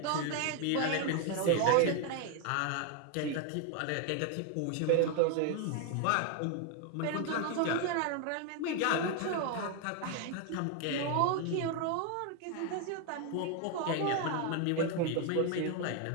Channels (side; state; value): both; different; correlation 0.01